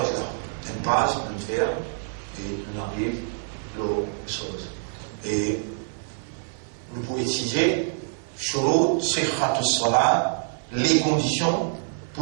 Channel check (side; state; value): left; silent; 58 dB below the other